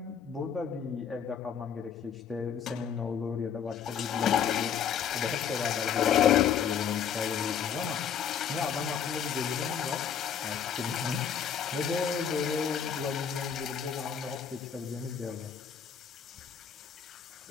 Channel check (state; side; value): quieter; right; 7.9 dB